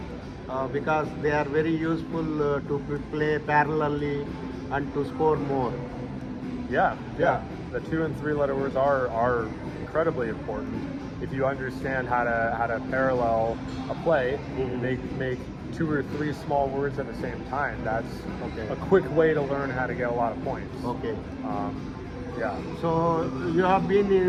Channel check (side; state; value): both; identical; correlation 1.00